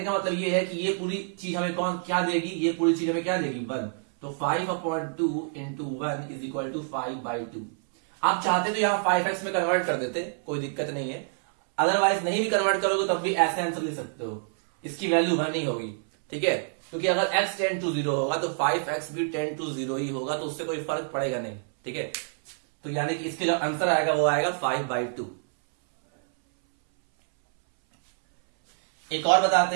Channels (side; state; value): left; silent; 60 dB below the other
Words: का मतलब ये है कि ये पूरी चीज हमें कौन क्या देगी, ये पूरी चीज हमें क्या देगी 1। तो 5/2 इंटू 1 इज इक्वल टू 5/2। आप चाहते तो यहाँ 5x में कन्वर्ट कर देते, कोई दिक्कत नहीं है, अदरवाइज नहीं भी कन्वर्ट करोगे तब भी ऐसे आंसर लिख सकते हो, इसकी वैल्यू 1 ही होगी। ठीक है, क्योंकि अगर x टेंड टू 0 होगा तो 5x भी टेंड टू 0 ही होगा, तो उससे कोई फर्क पड़ेगा नहीं। ठीक है, तो यानी कि इसके जो आंसर आएगा वो आएगा 5/2। एक और बताते